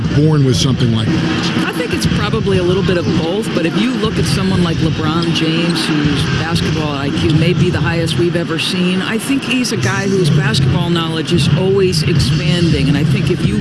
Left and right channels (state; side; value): identical; both; correlation 1.00